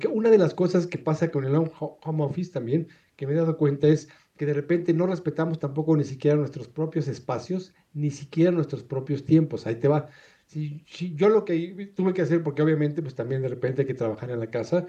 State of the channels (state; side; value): identical; both; correlation 1.00